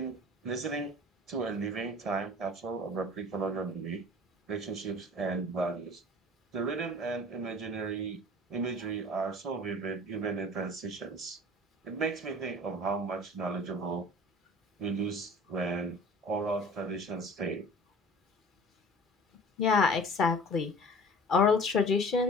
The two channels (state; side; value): normal; both; correlation 0.43